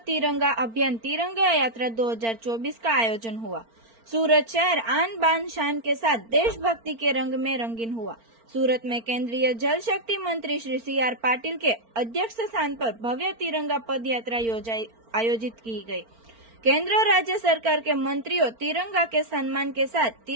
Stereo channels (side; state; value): left; late; 4.4 ms